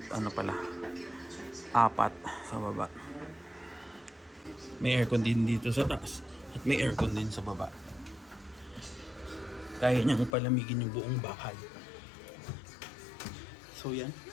pala, 4 sa baba. May aircon din dito sa taas at may aircon din sa baba. Kaya niyang palamigin yung buong bahay. So yan.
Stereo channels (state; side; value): drops out; right; at 10.4 s